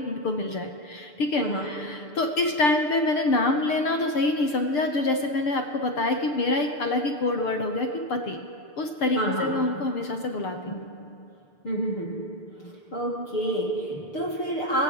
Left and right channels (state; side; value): late; right; 6.7 ms